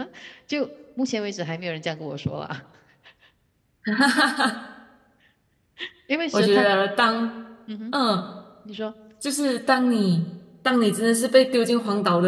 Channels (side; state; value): both; identical; correlation 1.00